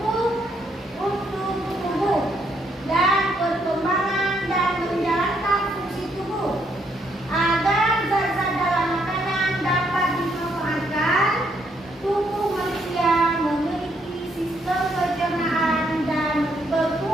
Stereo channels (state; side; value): normal; both; correlation 0.73